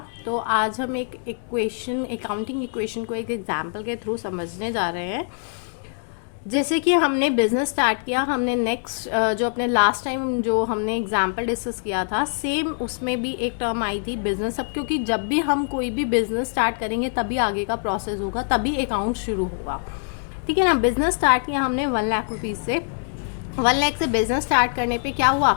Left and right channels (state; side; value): silent; right; 62 dB below the other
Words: तो आज हम एक अकाउंटिंग इक्वेशन को एक एग्जांपल के थ्रू समझने जा रहे हैं। जैसे कि हमने बिज़नेस स्टार्ट किया, हमने नेक्स्ट जो अपने लास्ट टाइम जो हमने एग्जांपल डिस्कस किया था, सेम उसमें भी एक टर्म आई थी बिज़नेस। अब क्योंकि जब भी हम कोई भी बिज़नेस स्टार्ट करेंगे तभी आगे का प्रोसेस होगा, तभी अकाउंट शुरू होगा, ठीक है ना। बिज़नेस स्टार्ट किया हमने 1 लाख रुपीज़ से। 1 लाख से बिज़नेस स्टार्ट करने पे क्या हुआ,